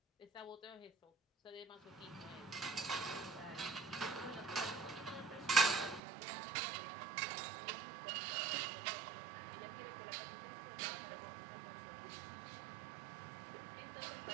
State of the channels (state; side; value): drops out; left; at 6.0 s